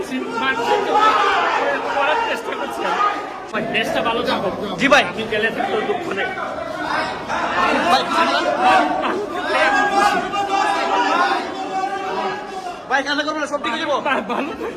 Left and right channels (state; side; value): identical; both; correlation 1.00